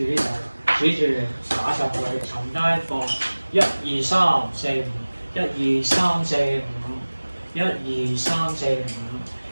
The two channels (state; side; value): inverted; both; correlation -1.00